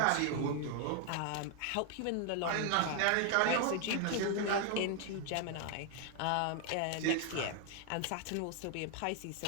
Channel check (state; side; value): different; both; correlation 0.00